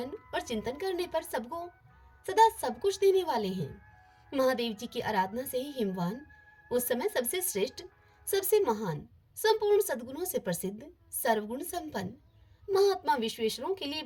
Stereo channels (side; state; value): both; identical; correlation 1.00